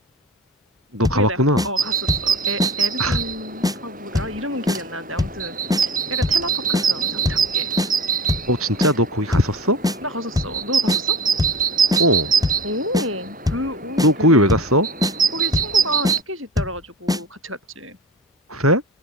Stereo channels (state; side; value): normal; both; correlation 0.35